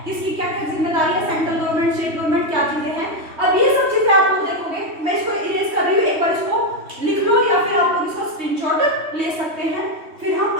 किसकी क्या क्या जिम्मेदारी है, सेंट्रल गवर्नमेंट, स्टेट गवर्नमेंट, क्या चीजें हैं। अब ये सब चीजें आप लोग देखोगे, मैं इसको इरेज कर रही हूँ, एक बार इसको लिख लो या फिर आप लोग इसका स्क्रीनशॉट ले सकते हैं, फिर हम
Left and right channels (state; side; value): late; left; 3.1 ms